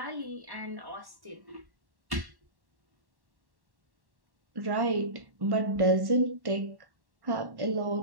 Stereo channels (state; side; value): late; left; 1.1 ms